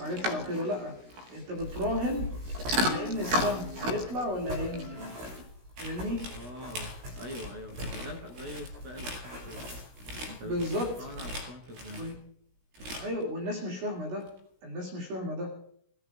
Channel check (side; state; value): left; late; 16 ms